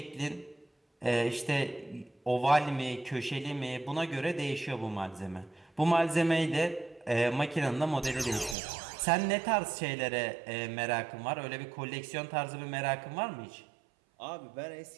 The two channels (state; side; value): drops out; left; at 8.6 s